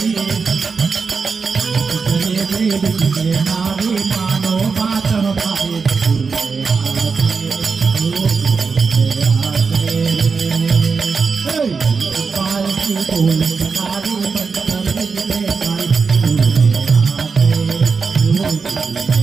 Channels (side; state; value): left; quieter; 5.0 dB